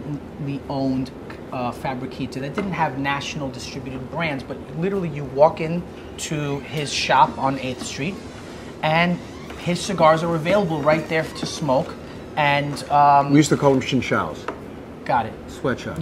owned Fabriquita that didn't have national distributed brands, but literally you walk into his shop on 8th Street, and his cigars are available right there to smoke. And we used to call them chinchals. Got it. Sweatshop.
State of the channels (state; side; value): identical; both; correlation 1.00